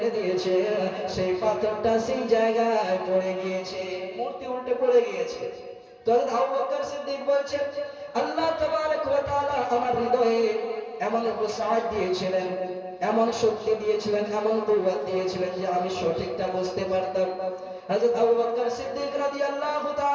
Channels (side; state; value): both; identical; correlation 1.00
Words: দিয়েছে, সেই পাথরটা সেই জায়গায় পড়ে গিয়েছে, মূর্তি উল্টে পড়ে গিয়েছে। তো হযরত আবু বকর সিদ্দিক বলছেন, আল্লাহ তাবারক ওয়া তাআলা আমার হৃদয়ে এমন উসাআত দিয়েছিলেন, এমন শক্তি দিয়েছিলেন, এমন কুওয়াত দিয়েছিলেন যে আমি সঠিকটা বুঝতে পারতাম। হযরত আবু বকর সিদ্দিক রাদিয়াল্লাহু